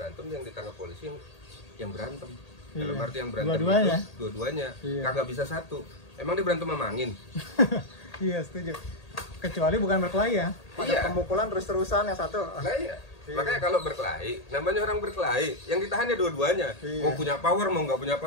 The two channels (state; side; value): late; right; 1.8 ms